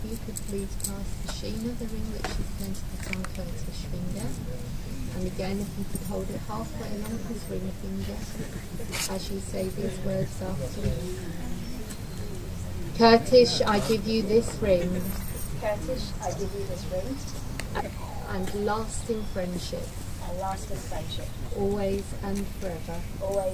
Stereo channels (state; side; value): identical; both; correlation 1.00